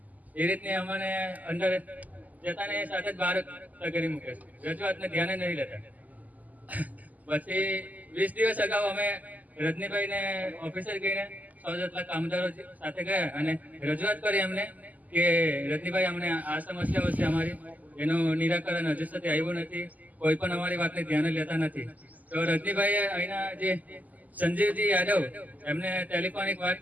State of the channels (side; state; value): left; late; 0.079 ms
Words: એ રીતની અમને અંદર જતાને સાથે જ બહાર કરી મૂકે છે. રજૂઆતને ધ્યાને નહીં લેતા. પછી 20 દિવસ અગાઉ અમે રજનીભાઈને ઓફિસર ગઈને 100 જેટલા કામદારો સાથે ગયા અને રજૂઆત કરી એમને કે રજનીભાઈ અમને આ સમસ્યાઓ છે અમારી, એનું નિરાકરણ હજુ સુધી આવ્યું નથી, કોઈ પણ અમારી વાતને ધ્યાને લેતા નથી. તો રજનીભાઈએ અહીંના જે સંજીવજી યાદવ એમને ટેલિફોનિક